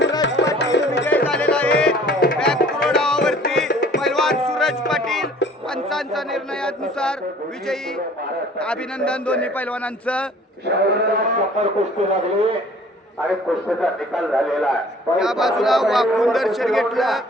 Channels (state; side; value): normal; both; correlation 0.52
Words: विजय झालेला आहे. बॅकथ्रोडावरती पैलवान सूरज पाटील पंचांच्या निर्णयानुसार विजयी. अभिनंदन दोन्ही पैलवानांचं. कुस्ती लागली आणि कुस्तीचा निकाल झालेला आहे. या बाजूला वाकून दर्शन घेतलं